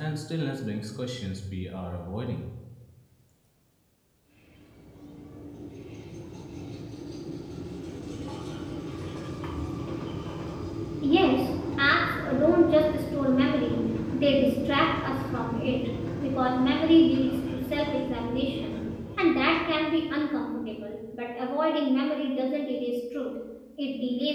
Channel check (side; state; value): both; identical; correlation 1.00